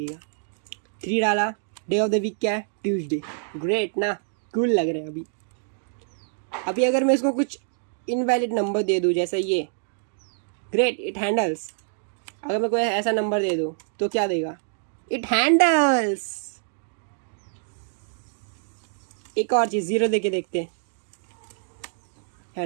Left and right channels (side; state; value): left; silent; digital silence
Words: 3 डाला, डे ऑफ द वीक क्या है, ट्यूसडे। ग्रेट ना, कूल लग रहा है अभी। अभी अगर मैं इसको कुछ इनवैलिड नंबर दे दूँ जैसे ये, ग्रेट, इट हैंडल्स। अगर मैं कोई ऐसा नंबर दे दूँ तो क्या देगा, इट हैंडल्स। एक और चीज़, 0 दे के देखते हैं,